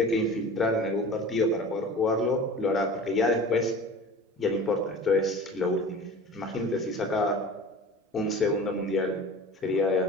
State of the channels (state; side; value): normal; both; correlation 0.38